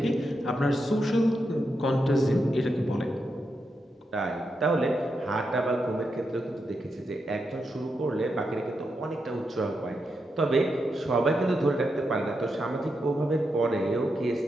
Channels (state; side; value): normal; both; correlation 0.85